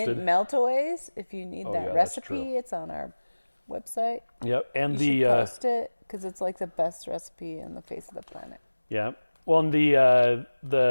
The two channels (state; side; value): inverted; both; correlation -1.00